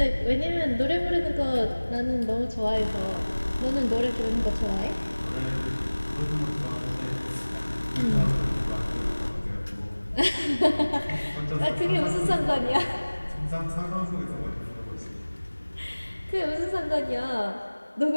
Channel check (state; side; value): inverted; both; correlation -1.00